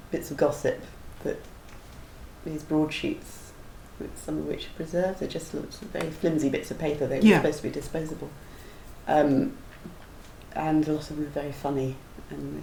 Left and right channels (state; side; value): identical; both; correlation 1.00